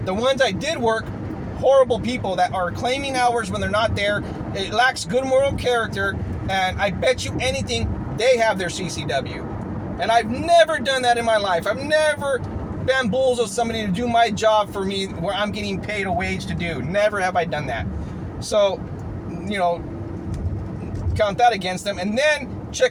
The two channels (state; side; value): identical; both; correlation 1.00